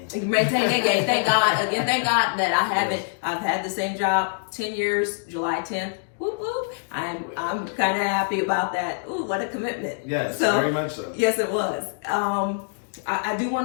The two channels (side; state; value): right; silent; digital silence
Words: Maintain and gain. Thank God. Again, thank God that I've had the same job 10 years, July 10th. Whoop, whoop. I'm kind of happy about that. Ooh, what a commitment. Yes, very much so. Yes, it was. I do